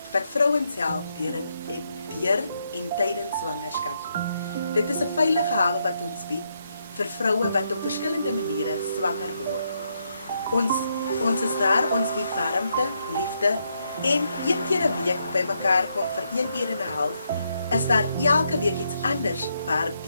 wat vrouens help deur en tydens swangerskap. Dit is 'n veilige hawe wat ons bied vir vroue wat op verskillende maniere swanger word. Ons is daar, ons bied warmte, liefde en een keer 'n week by mekaar kom vir 1 uur en 'n half, is daar elke week iets anders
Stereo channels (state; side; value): inverted; both; correlation -0.78